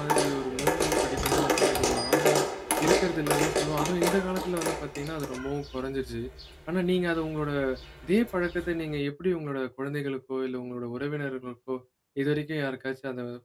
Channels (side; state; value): both; identical; correlation 1.00